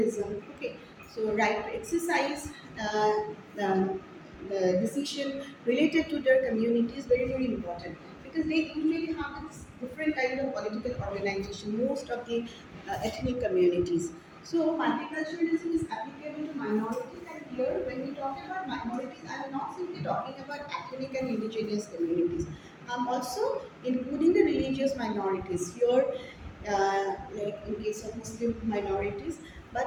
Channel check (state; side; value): identical; both; correlation 1.00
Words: Okay, so right to exercise the decision related to their community is very very important, because they usually have this different kind of political organization, most of the ethnic communities. So multiculturalism is applicable to minorities, and here when we talk about minorities, I am not simply talking about ethnic and indigenous communities. I'm also including the religious minorities here, like in case of Muslim minorities.